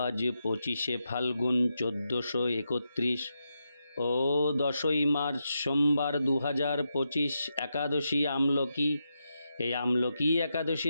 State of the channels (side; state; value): both; inverted; correlation -0.85